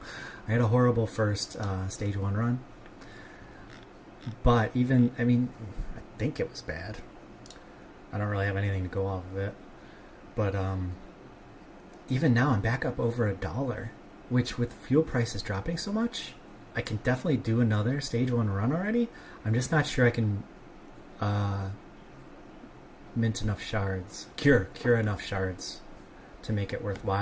I had a horrible first stage 1 run, but even, I mean, I think it was bad, I don't really have anything to go off of it, but even now I'm back up over $1, which with fuel prices dropping so much, I can definitely do another stage 1 run already. I'm just not sure I can mint enough shards, cure enough shards to make it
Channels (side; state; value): both; identical; correlation 1.00